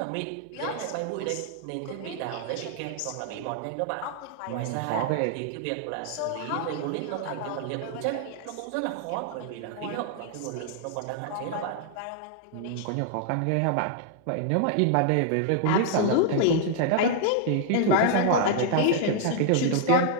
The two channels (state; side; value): different; both; correlation 0.00